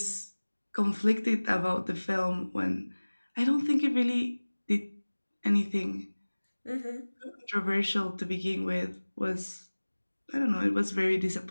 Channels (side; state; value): both; inverted; correlation -1.00